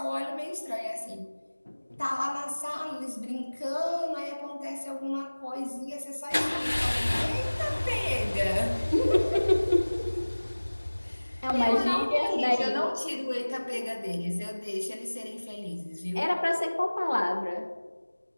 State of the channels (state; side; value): inverted; both; correlation -1.00